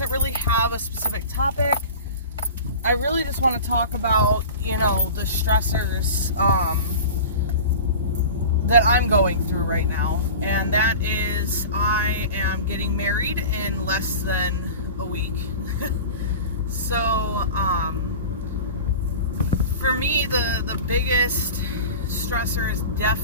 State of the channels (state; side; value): inverted; both; correlation -0.35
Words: really have a specific topic. I really just want to talk about, the stressors that I'm going through right now, and that is I am getting married in less than a week. So for me, the biggest stressor is